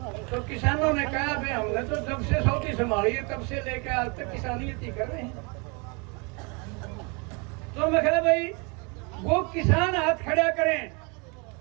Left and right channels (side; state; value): left; quieter; 31.3 dB